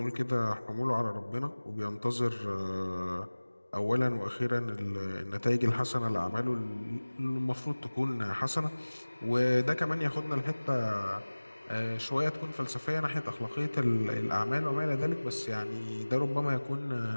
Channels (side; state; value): both; inverted; correlation -1.00